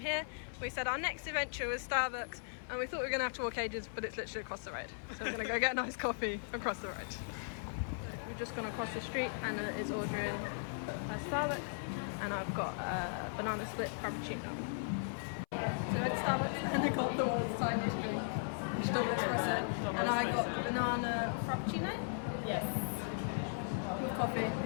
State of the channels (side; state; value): right; silent; 53 dB below the other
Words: We said our next adventure was Starbucks and we thought we were going to have to walk ages, but it's literally across the road. So we're going to go get a nice coffee across the road. We've just gone across the street. Anna is ordering a Starbucks and I've got a banana split frappuccino. So at Starbucks and I got the world's tiniest drink, which is double espresso, and I got the banana frappuccino Yes. with coffee